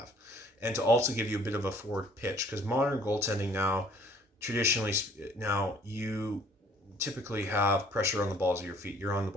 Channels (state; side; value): normal; both; correlation 0.57